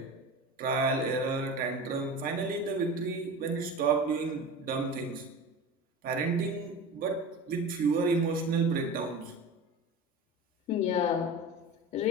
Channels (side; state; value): both; normal; correlation 0.31